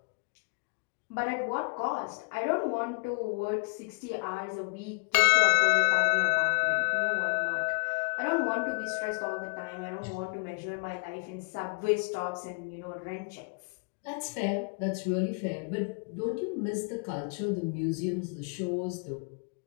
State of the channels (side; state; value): right; quieter; 36.7 dB